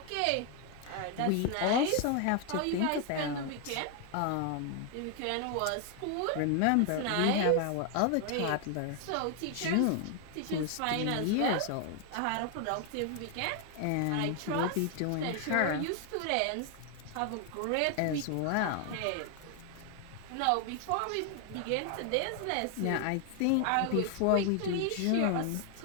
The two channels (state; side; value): different; both; correlation 0.00